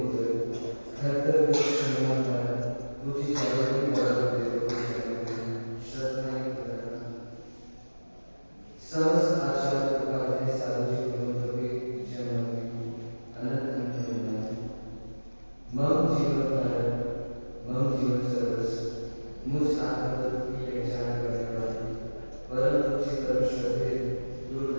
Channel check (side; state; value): both; inverted; correlation -1.00